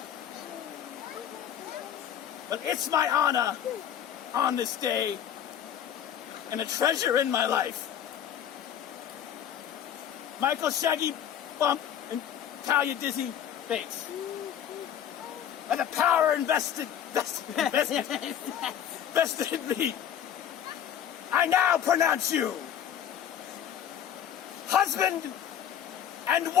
But it's my honor on this day and a treasure in my life. Michael Shaggy Bump and Talia Dizzy Bates. By the power invested in me, I now pronounce you husband and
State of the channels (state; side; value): quieter; right; 9.8 dB